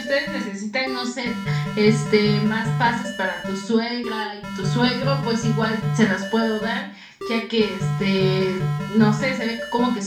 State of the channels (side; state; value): both; identical; correlation 1.00